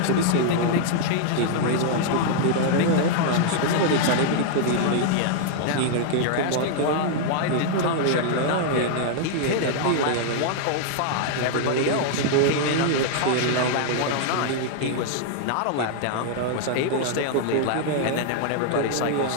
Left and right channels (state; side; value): different; both; correlation -0.01